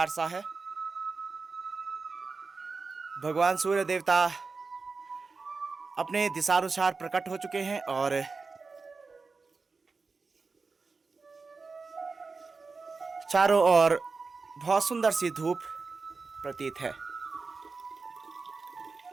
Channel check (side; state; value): left; quieter; 4.3 dB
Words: सा है। भगवान सूर्य देवता अपने दिशानुसार प्रकट हो चुके हैं और चारों ओर बहुत सुंदर सी धूप प्रतीत है।